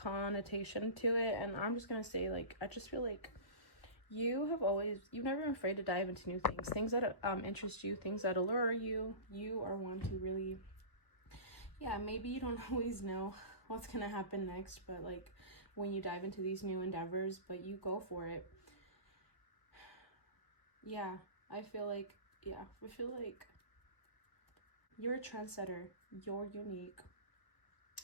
to it. And I'm just gonna say, like, I just feel like you've never been afraid to dive into new things that interest you, things that allure you. You are one to really, yeah, maybe you don't always know what's gonna happen next, but like when you dive into these new endeavors, but you go for it. Yeah, I feel like you're a trendsetter. You're unique.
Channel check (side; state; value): right; late; 1.3 ms